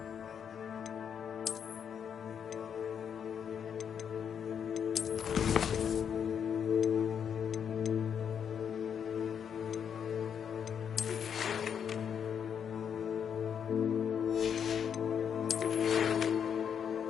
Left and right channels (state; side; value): quieter; right; 7.8 dB